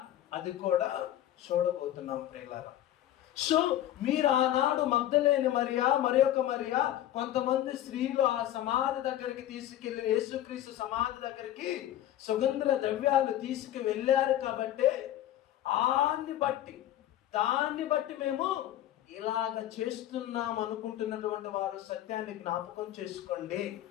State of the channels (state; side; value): quieter; right; 12.8 dB